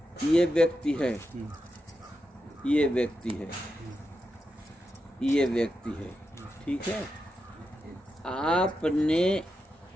ये व्यक्ति है, ये व्यक्ति है, ये व्यक्ति है, ठीक है। आपने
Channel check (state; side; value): normal; both; correlation 0.87